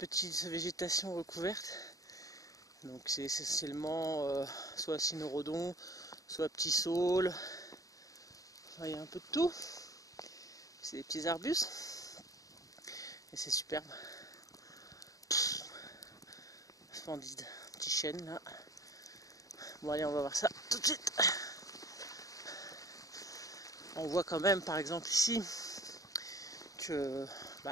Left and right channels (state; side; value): late; right; 0.17 ms